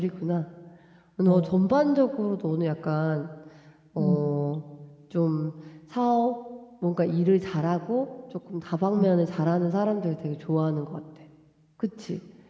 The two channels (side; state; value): both; identical; correlation 1.00